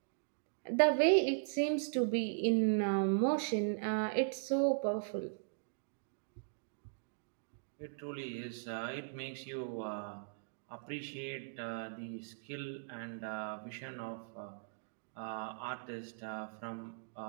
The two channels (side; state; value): left; silent; digital silence